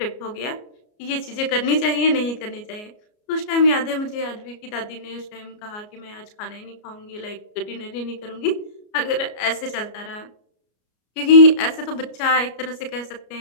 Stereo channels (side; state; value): right; late; 33 ms